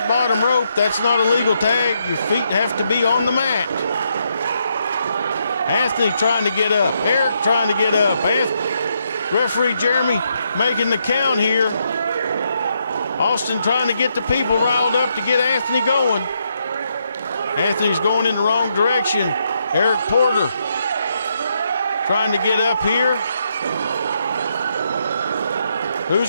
bottom rope. That's not a legal tag. Your feet have to be on the mat. Anthony trying to get up. Eric trying to get up. Referee Jeremy making the count here. Austin trying to get the people riled up to get Anthony going. Anthony's going in the wrong direction. Eric Porter trying to get up here.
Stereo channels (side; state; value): both; inverted; correlation -0.78